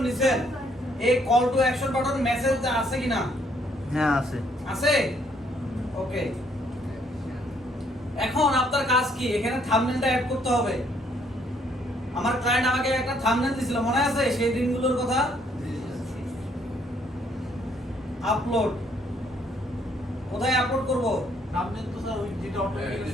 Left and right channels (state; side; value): normal; both; correlation 0.67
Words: নিছেন, এই call to action button message আছে কিনা? হ্যাঁ আছে। আছে, ওকে। এখন আপনার কাজ কি? এখানে থাম্বনেলটা অ্যাড করতে হবে। আমার ক্লায়েন্ট আমাকে একটা থাম্বনেল দিছিল, মনে আছে সেই দিনগুলোর কথা? আপলোড, কোথায় আপলোড করব? সামনে তো স্যার ওই যেটা হ্যাঁ, অটোমেটিক এই